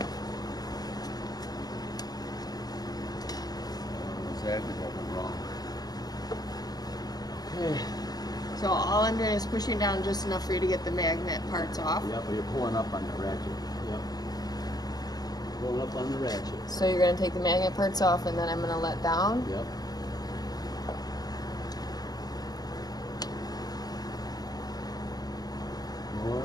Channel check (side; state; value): right; late; 0.19 ms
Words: Exactly what went wrong. Okay. So all I'm doing is pushing down just enough for you to get the magnet parts off. Yep, but you're pulling up on the ratchet. Yep. Pulling up on the ratchet. So you're going to take the magnet parts off and then I'm going to let down? Yep.